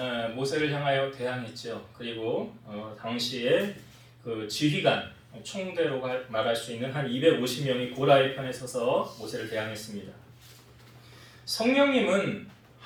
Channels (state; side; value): identical; both; correlation 1.00